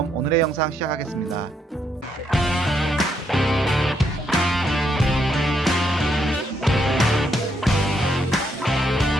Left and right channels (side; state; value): both; normal; correlation 0.75